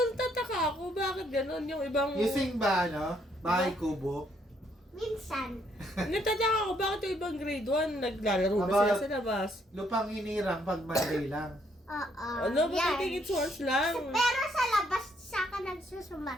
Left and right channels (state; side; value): normal; both; correlation 0.70